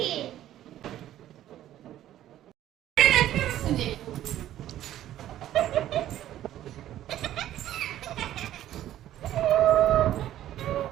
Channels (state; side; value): quieter; left; 12.7 dB